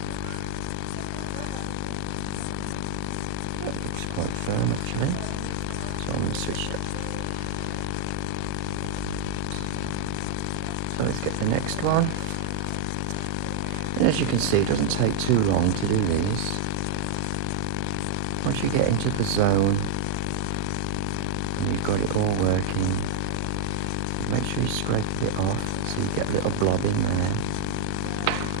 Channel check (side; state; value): both; different; correlation -0.01